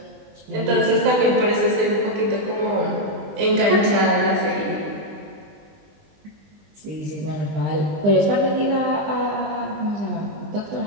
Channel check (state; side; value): late; left; 20 ms